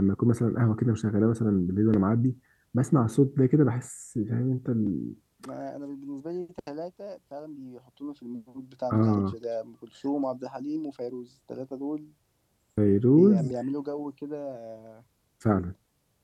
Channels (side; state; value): both; identical; correlation 1.00